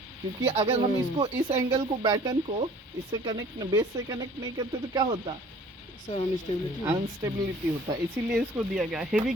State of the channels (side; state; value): both; normal; correlation 0.51